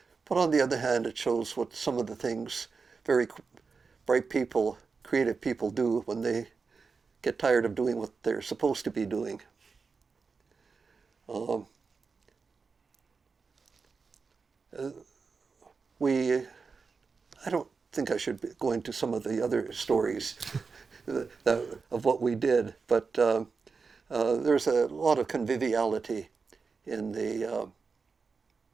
but on the other hand, it shows what some of the things very bright people, creative people do when they get tired of doing what they're supposed to be doing. I don't think I should go into some of the other stories of what we did, but there's a lot of conviviality in the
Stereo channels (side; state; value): left; quieter; 4.9 dB